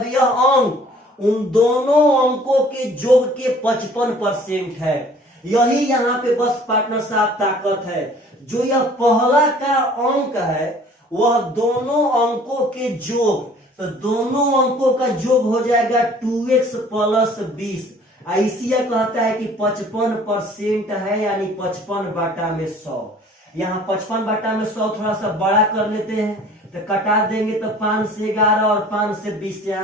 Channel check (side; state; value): both; normal; correlation 0.52